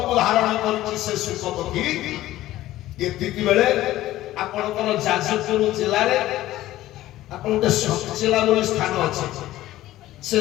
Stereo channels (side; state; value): right; quieter; 15.2 dB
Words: ଧାରଣ କରିଛି ସେ ଶୁକ ପକ୍ଷୀ, ଏତିକି ବେଳେ ଆପଣଙ୍କର ଯାଜପୁର ଜିଲ୍ଲାରେ ଆପଣ ଗୋଟେ ସତଚିଲା ବୋଲି ସ୍ଥାନ ଅଛି। ସେ